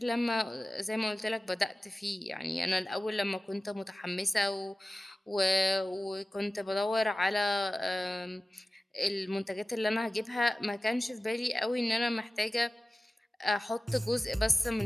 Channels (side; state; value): both; normal; correlation 0.96